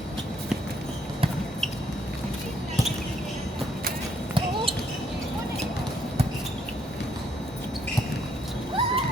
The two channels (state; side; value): normal; both; correlation 0.70